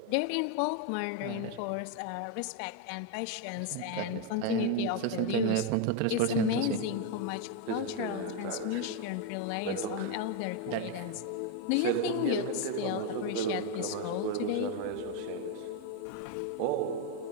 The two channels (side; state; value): both; different; correlation 0.02